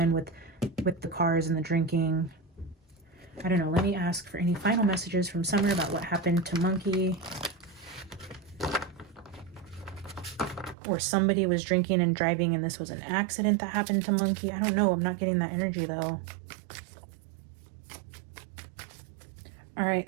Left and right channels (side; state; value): left; drops out; at 10.8 s